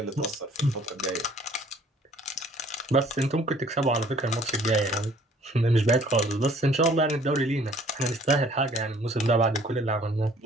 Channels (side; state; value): both; normal; correlation 0.56